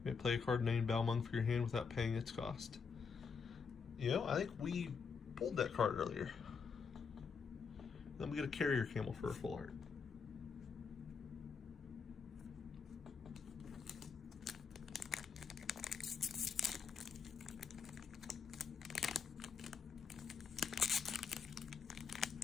may play a card named Balmung for your hand without paying its cost. You know, I think we pulled that card earlier. Then we get a Carrier Camel for a full art.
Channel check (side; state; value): right; quieter; 5.8 dB